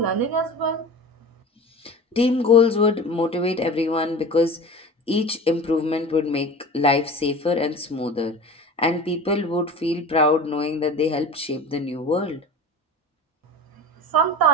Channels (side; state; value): both; normal; correlation 0.35